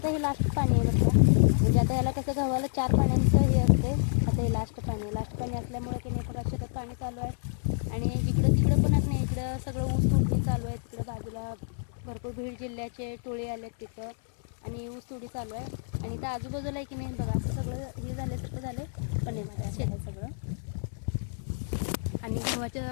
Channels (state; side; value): silent; right; 59 dB below the other